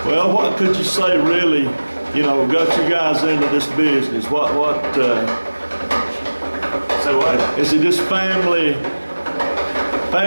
Well, what could you say really, you know, got you guys into this business? So what? Is it just family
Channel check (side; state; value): both; inverted; correlation -1.00